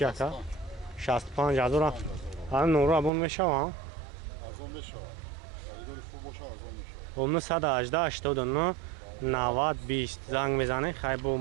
ака? 65 000. ҳам номеро абон мешава? арзон мешава. خریداری خوب باشه ارزان میشه. 918 89 90 20 زنگ میزنه خیلی با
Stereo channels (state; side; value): drops out; left; at 3.1 s